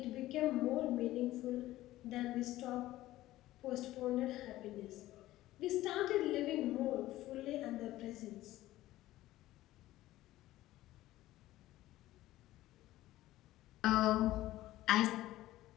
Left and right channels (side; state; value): right; quieter; 15.8 dB